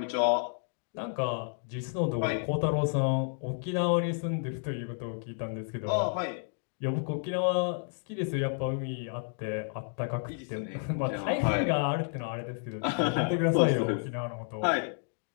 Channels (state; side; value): silent; right; 57 dB below the other